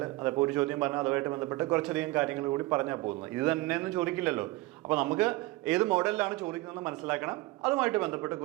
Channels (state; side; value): quieter; left; 20.6 dB